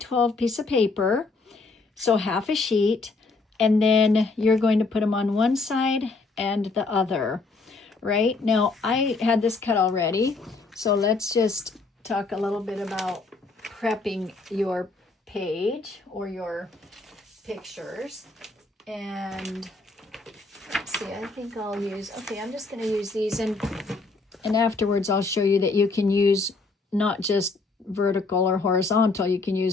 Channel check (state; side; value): quieter; right; 3.8 dB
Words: piece of paper, so half a sheet, and then you're going to put them on one side and the other. Right now, I had this cut already, so let's just talk a little bit about prepping your page or your pictures. And let's see, I think I'll use, I'm just going to use these, and afterwards I'll show you that you can use not just vertical or horizontal, you can